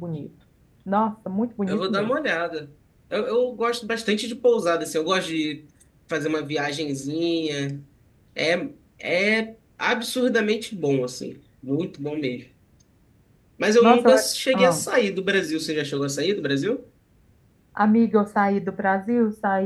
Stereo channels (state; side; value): identical; both; correlation 1.00